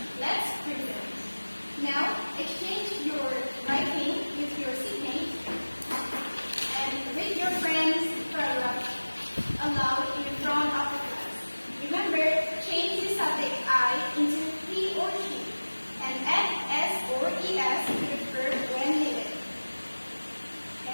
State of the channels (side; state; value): both; inverted; correlation -1.00